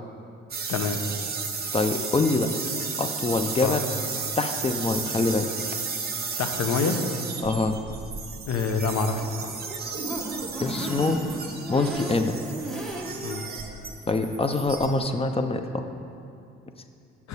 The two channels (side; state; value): both; normal; correlation 0.49